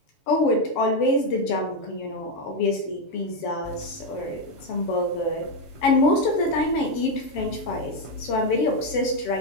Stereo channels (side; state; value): right; late; 7.5 ms